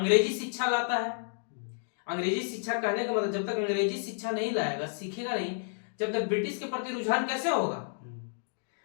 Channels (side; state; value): right; silent; digital silence